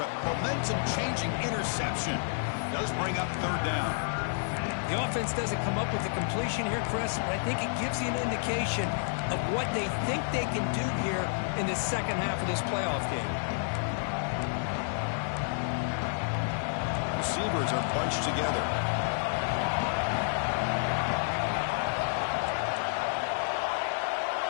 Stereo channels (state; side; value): silent; right; digital silence